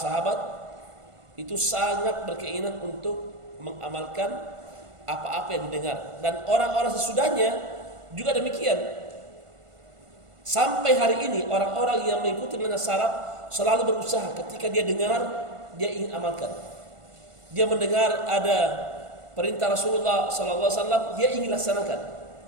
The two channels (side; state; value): left; late; 1.5 ms